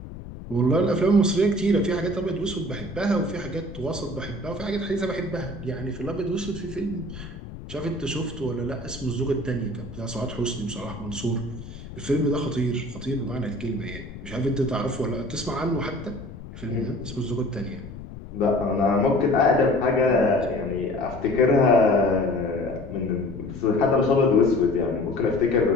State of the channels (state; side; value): noise; left; rumble, 13 dB below the sound